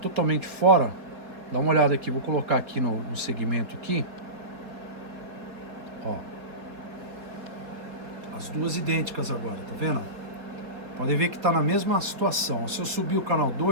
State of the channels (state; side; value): late; left; 4.4 ms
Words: fora? Dá uma olhada aqui, vou colocar aqui no segmento aqui. Ó. As duas idênticas agora, tá vendo? Podem ver que está na mesma situação. Se eu subir o canal